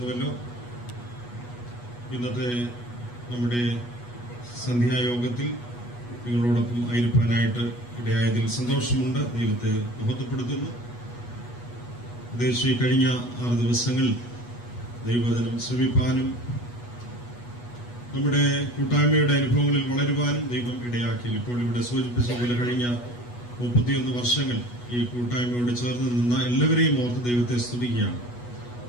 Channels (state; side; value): late; right; 8.2 ms